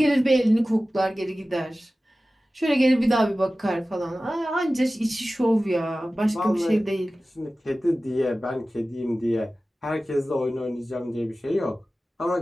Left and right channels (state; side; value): normal; both; correlation 0.96